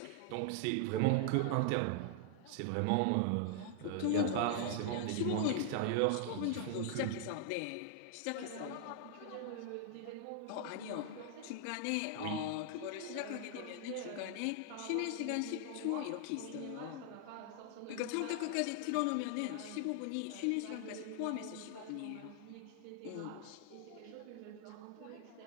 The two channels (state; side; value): different; both; correlation 0.00